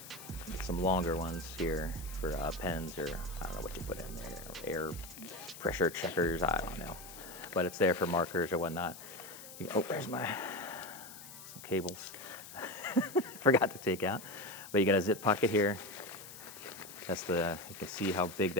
some longer ones here for pens, or I don't know what you put in there, air pressure checkers, I don't know. But it's there for markers or whatnot. There's some cables. Forgot to take out. But you got a zip pocket here. You can see how big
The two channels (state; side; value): noise; left; hiss, 15 dB below the sound